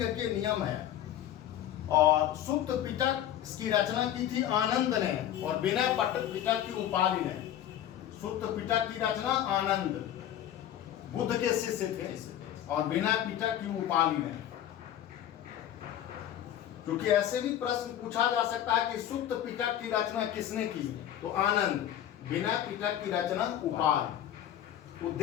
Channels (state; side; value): quieter; right; 11.4 dB